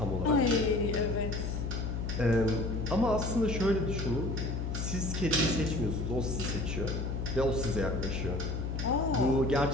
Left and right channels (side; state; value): left; noise; hum, 2 dB below the sound